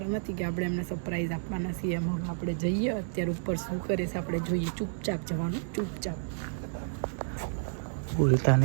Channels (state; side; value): silent; left; digital silence